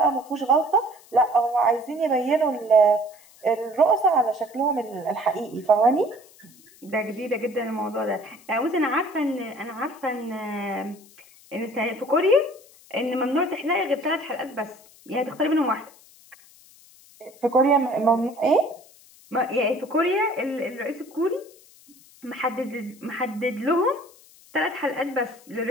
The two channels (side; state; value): left; noise; hiss, 25 dB below the sound